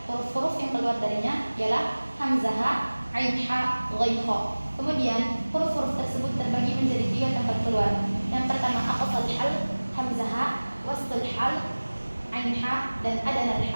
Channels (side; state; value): both; inverted; correlation -1.00